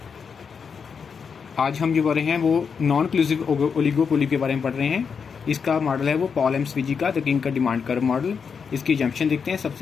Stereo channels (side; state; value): right; quieter; 6.1 dB